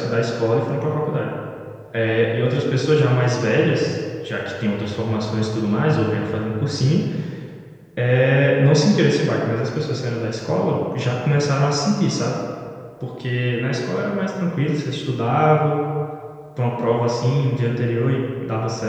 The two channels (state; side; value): identical; both; correlation 1.00